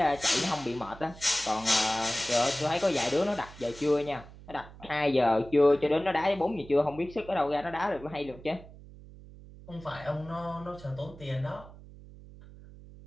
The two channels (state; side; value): noise; right; hum, 18 dB below the sound